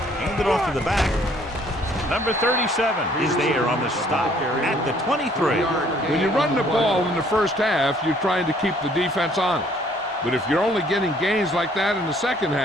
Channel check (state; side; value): normal; both; correlation 0.61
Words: Hand it off to the back. Number 37 is there on the stop at the 23. When you run the ball in the first half, you're trying to keep the defense honest. But if you're only getting gains like that in the second